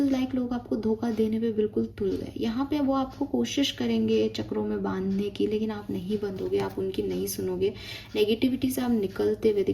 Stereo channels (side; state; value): both; identical; correlation 1.00